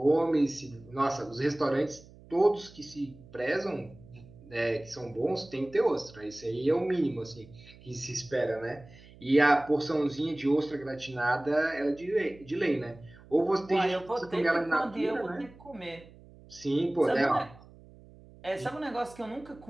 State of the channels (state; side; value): noise; right; hum, 22 dB below the sound